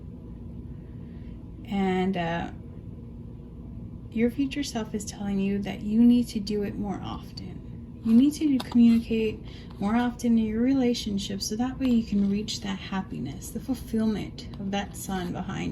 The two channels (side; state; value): both; identical; correlation 1.00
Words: and your future self is telling you that you need to do it more often. You need to communicate more often in your relationship, so that way you can reach that happiness, the fulfillment of that sun